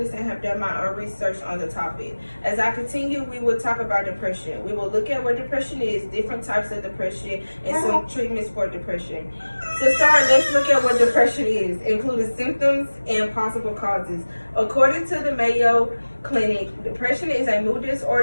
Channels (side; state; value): both; inverted; correlation -1.00